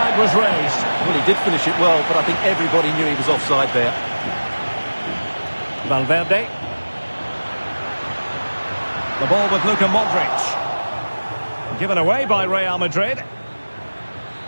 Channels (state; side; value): inverted; both; correlation -1.00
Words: was raised. Well, he did finish it well, but I think everybody knew he was offside there. Valverde. The ball with Luka Modric. Given away by Real Madrid.